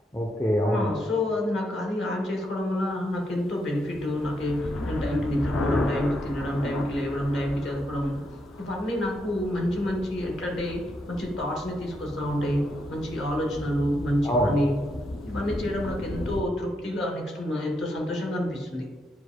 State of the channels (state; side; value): normal; both; correlation 0.79